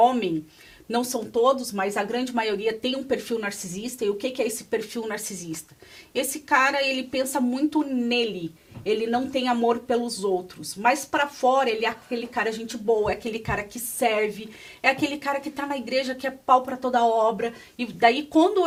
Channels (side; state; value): both; identical; correlation 1.00